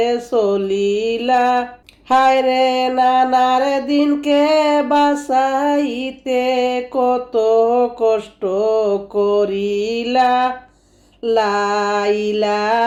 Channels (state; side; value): identical; both; correlation 1.00